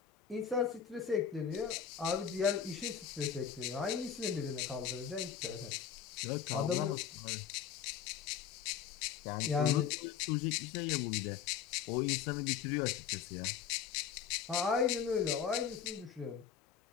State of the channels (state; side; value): quieter; right; 8.0 dB